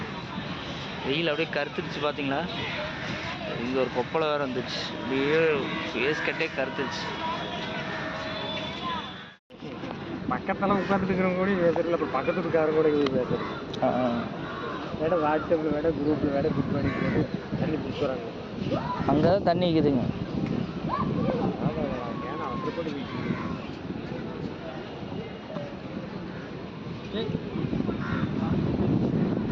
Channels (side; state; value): both; identical; correlation 1.00